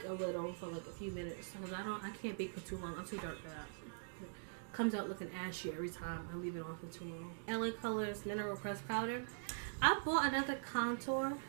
a little for like a few minutes because I can't bake for too long. I'm too dark for that. It comes out looking ashy every time I leave it on for too long. LA Colors Mineral Press Powder. I bought another contour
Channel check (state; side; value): silent; left; digital silence